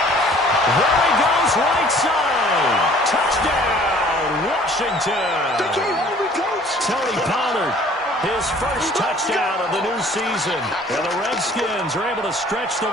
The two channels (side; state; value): both; normal; correlation 0.53